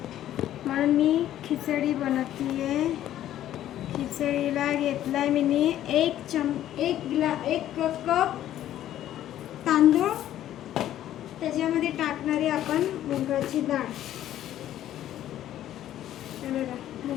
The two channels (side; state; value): right; quieter; 12.3 dB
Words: म्हणून मी खिचडी बनवतीये. खिचडीला घेतलाय मी एक कप तांदूळ. त्याच्यामध्ये टाकणारी आपण मुगाची डाळ.